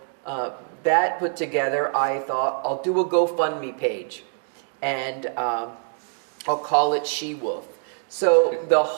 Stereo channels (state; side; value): silent; left; digital silence